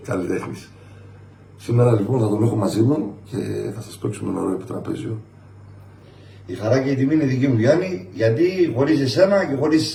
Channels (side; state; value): both; identical; correlation 1.00